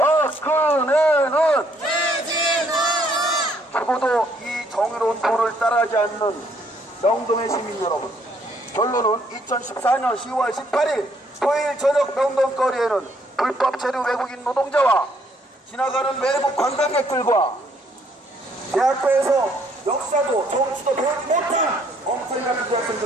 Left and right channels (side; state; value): both; normal; correlation 0.67